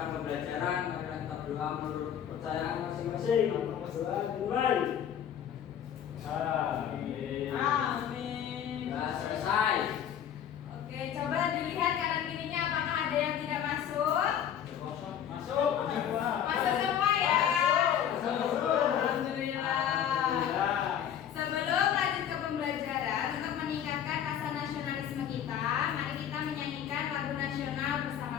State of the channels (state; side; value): quieter; right; 9.5 dB